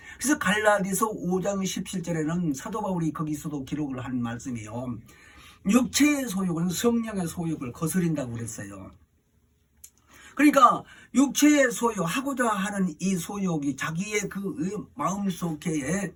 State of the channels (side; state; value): both; identical; correlation 1.00